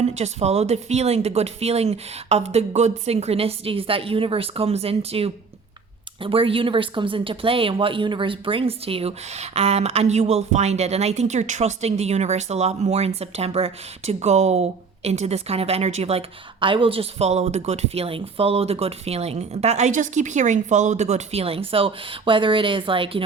Just follow the feeling, the good feeling of the good synchronicities that where universe comes into play and what universe brings to you, and you will find it. And I think you're trusting the universe a lot more in September to go into this kind of energy of like, I will just follow the good feeling, that I just keep hearing, follow the good feeling. So whether it is like,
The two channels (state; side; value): quieter; left; 5.0 dB